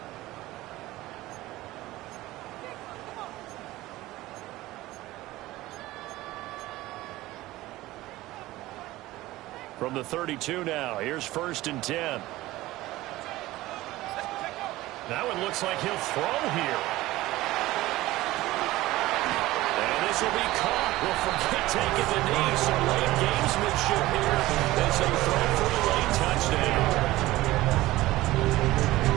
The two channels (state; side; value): quieter; left; 17.5 dB